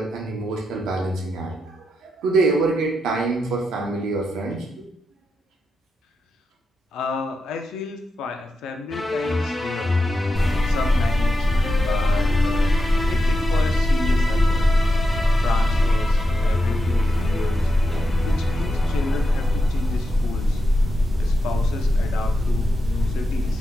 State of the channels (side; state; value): both; normal; correlation 0.87